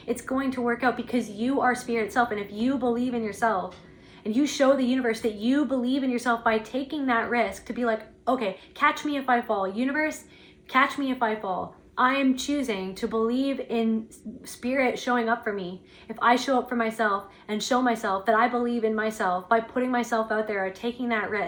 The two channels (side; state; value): both; identical; correlation 1.00